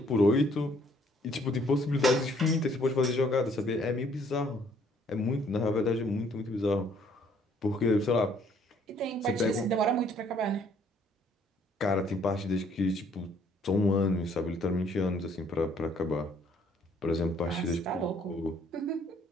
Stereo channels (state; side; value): normal; both; correlation 0.63